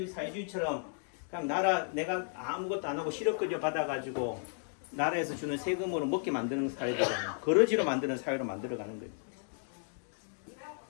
사회주의처럼 그냥 내가 아무것도 안 하고 실업급여 받아가지고 나라에서 주는 세금으로 먹게 만드는 사회잖아요. 거러지로 만드는 사회로 만들어가는 거예요.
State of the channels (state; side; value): silent; right; 55 dB below the other